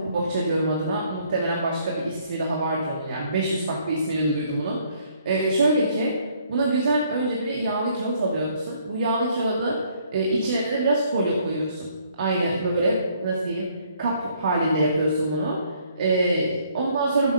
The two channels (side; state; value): both; inverted; correlation -0.65